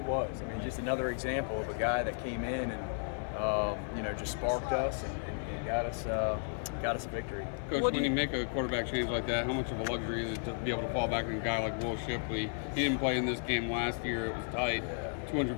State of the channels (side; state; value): right; silent; 55 dB below the other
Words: was. I mean, just another example of a guy that came in and just sparked us and got us a victory. Coach, when you make a quarterback change like that, how much of a luxury is it to be able to fall back on a guy like Will Shipley? He didn't play in this game last year. It was tight.